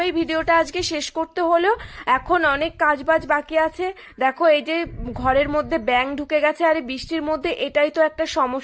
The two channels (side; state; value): both; identical; correlation 1.00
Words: ভিডিওটা আজকে শেষ করতে হলো। এখন অনেক কাজবাজ বাকি আছে। দেখো এই যে ঘরের মধ্যে ব্যাঙ ঢুকে গেছে, আর এই বৃষ্টির মধ্যে এটাই তো একটা